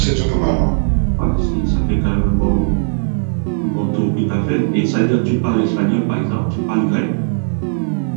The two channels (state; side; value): silent; left; 68 dB below the other